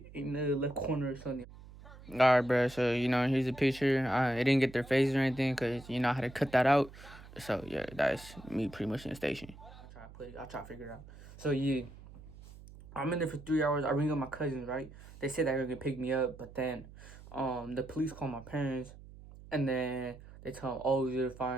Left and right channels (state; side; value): noise; right; hum, 18 dB below the sound